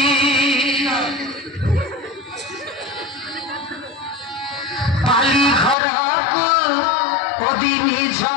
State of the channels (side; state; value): right; drops out; at 5.8 s